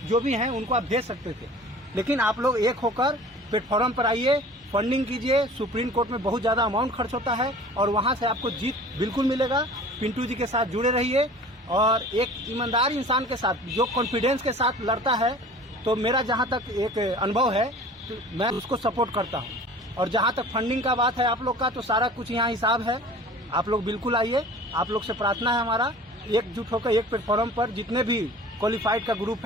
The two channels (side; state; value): both; normal; correlation 0.44